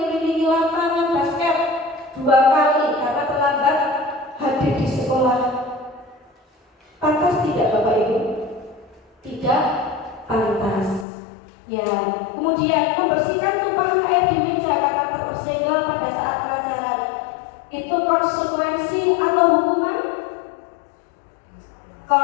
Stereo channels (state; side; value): drops out; right; at 11.1 s